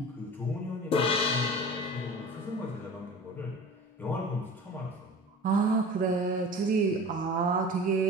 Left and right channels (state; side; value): normal; both; correlation 0.38